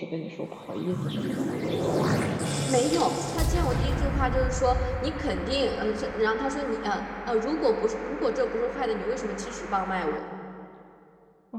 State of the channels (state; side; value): identical; both; correlation 1.00